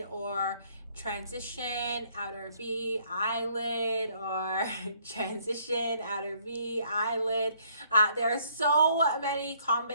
or transition, outer V, eyelid, or transition, outer V, eyelid. There are so many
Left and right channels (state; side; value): inverted; both; correlation -0.65